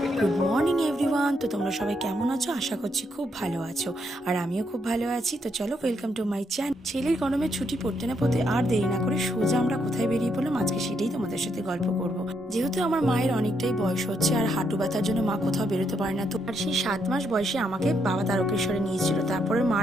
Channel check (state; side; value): normal; both; correlation 0.77